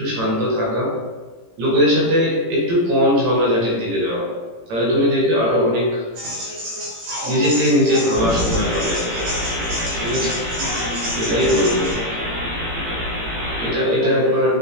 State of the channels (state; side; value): late; left; 18 ms